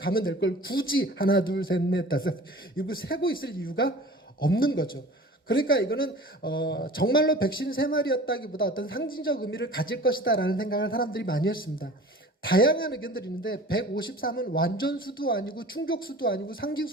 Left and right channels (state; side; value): normal; both; correlation 0.42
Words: 될 걸 굳이 하나 둘 셋 넷 다섯 이거 세고 있을 이유가 없는 거죠. 그러니까 이거는 정말로 153마리였다기보다 어떤 상징적 의미를 가질 것이다라는 생각을 사람들이 많이 했습니다. 다양한 의견들이 있는데 153은 완전수도 아니고 충족수도 아니고